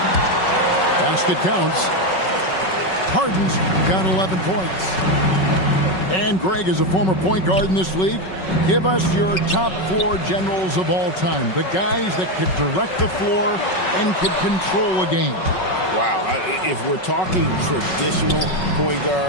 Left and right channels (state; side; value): late; right; 5.4 ms